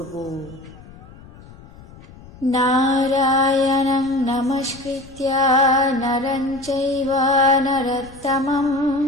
নারায়ণং নমস্কৃত্য নরং চৈব নরোত্তমং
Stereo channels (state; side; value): noise; left; rumble, 20 dB below the sound